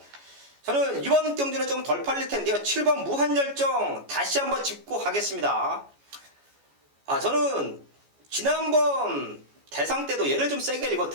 저는 이번 경주는 좀 덜 팔릴 텐데요. 7번 무한열정 다시 한번 짚고 가겠습니다. 저는 지난번 대상 때도 얘를 좀 세게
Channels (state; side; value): late; left; 14 ms